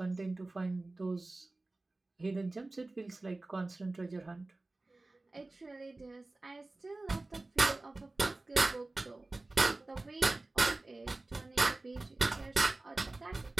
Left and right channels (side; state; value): left; quieter; 3.0 dB